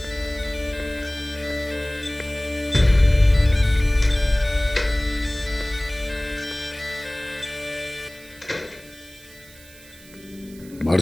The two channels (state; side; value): noise; right; hiss, 22 dB below the sound